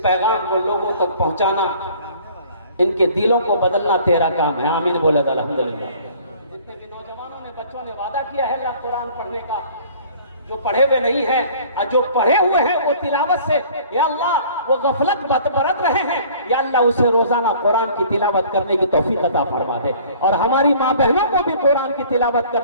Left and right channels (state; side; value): inverted; both; correlation -0.51